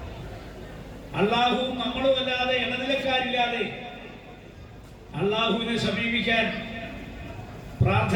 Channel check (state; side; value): identical; both; correlation 1.00